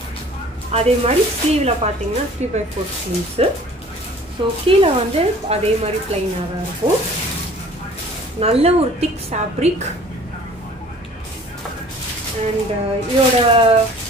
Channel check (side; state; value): both; normal; correlation 0.50